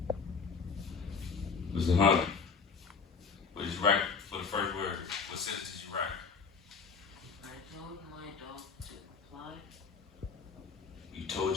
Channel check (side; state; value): right; quieter; 5.3 dB